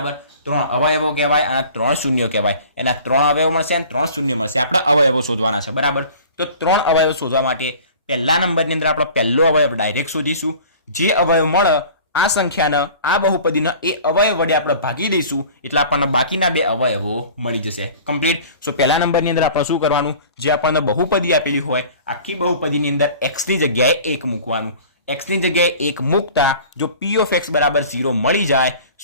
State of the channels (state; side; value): inverted; both; correlation -0.44